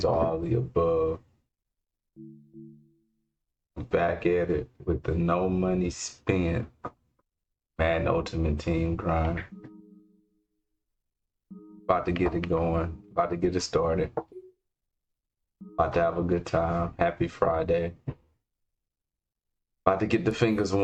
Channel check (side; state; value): both; identical; correlation 1.00